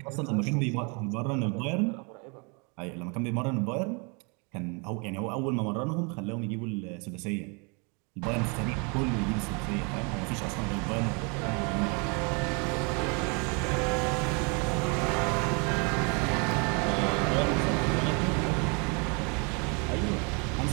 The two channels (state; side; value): quieter; left; 33.5 dB